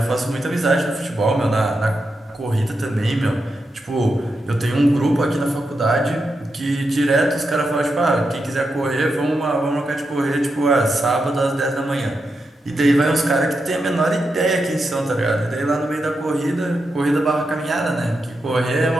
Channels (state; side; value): normal; both; correlation 0.86